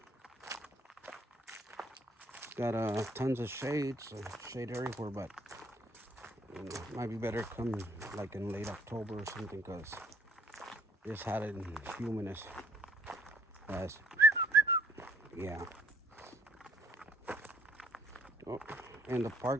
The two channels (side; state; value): both; normal; correlation 0.62